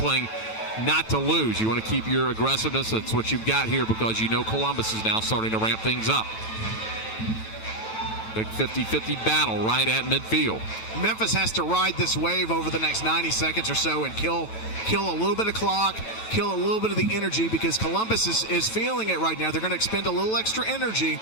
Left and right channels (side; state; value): right; late; 9.1 ms